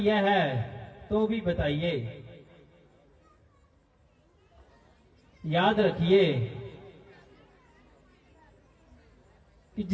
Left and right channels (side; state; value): both; identical; correlation 1.00